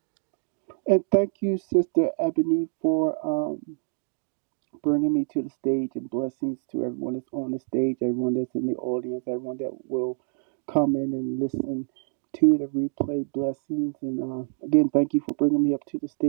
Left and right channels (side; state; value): left; silent; digital silence